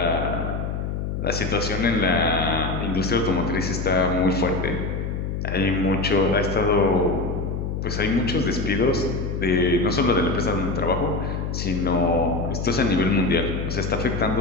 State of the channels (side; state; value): left; noise; hum, 3 dB below the sound